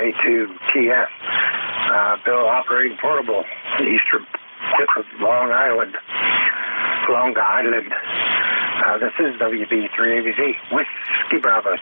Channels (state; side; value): inverted; both; correlation -1.00